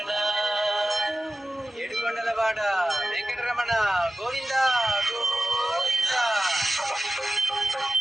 ఏడుకొండలవాడ వెంకటరమణ గోవింద గోవింద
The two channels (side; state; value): both; normal; correlation 0.92